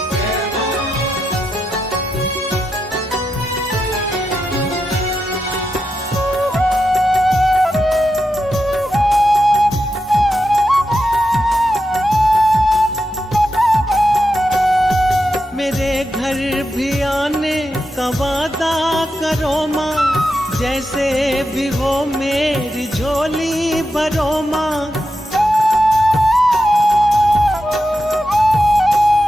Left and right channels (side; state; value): both; normal; correlation 0.87